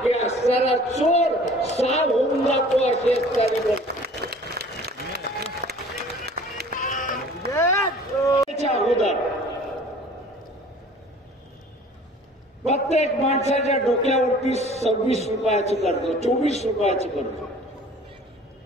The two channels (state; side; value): normal; both; correlation 0.48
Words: की असणारा चोर साफ होऊन जातो अशी असणारी अगोदर प्रत्येक माणसाच्या डोक्यावरती 26 रुपयाचं कर्ज, 24 रुपयाचं कर्ज,